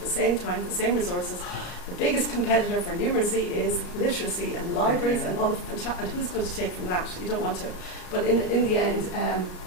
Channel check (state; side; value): late; right; 34 ms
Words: same time, the same resources? The biggest competitor for numeracy is literacy and libraries and all the and who's going to take from that? You don't want to. But in the end,